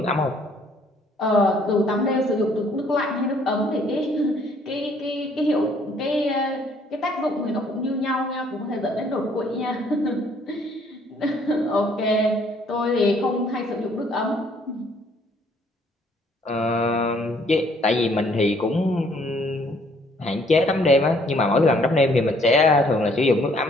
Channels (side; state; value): both; normal; correlation 0.63